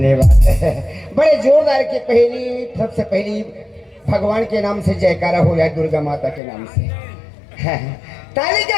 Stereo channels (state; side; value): drops out; right; at 6.4 s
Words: बड़े जोरदार के पहली सबसे पहली भगवान के नाम से जयकारा हो या दुर्गा माता के नाम से ताली